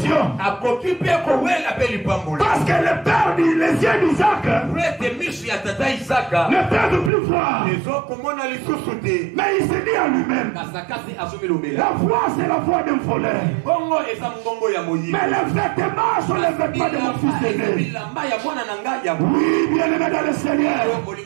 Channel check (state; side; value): drops out; left; at 7.1 s